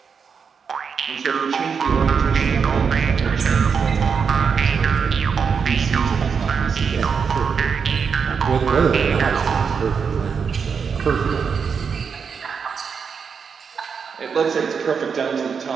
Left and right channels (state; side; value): quieter; left; 6.2 dB